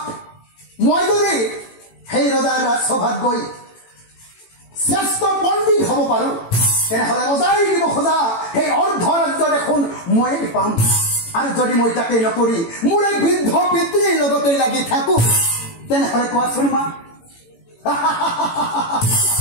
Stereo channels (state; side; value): late; right; 18 ms